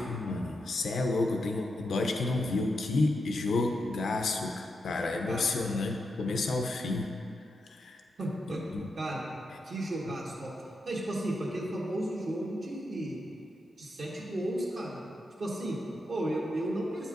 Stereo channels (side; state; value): both; normal; correlation 0.85